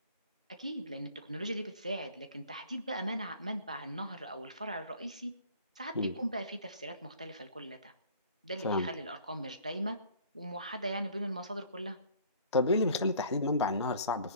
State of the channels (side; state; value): both; inverted; correlation -0.50